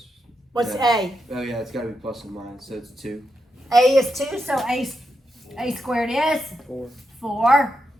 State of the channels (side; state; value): both; normal; correlation 0.84